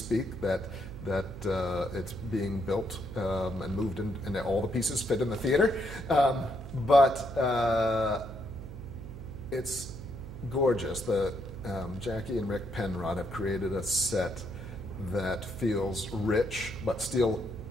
that it's being built and moved in, and all the pieces fit in the theater. But it's gorgeous. Jackie and Rick Penrod have created a set that feels rich but still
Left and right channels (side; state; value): right; noise; hum, 11 dB below the sound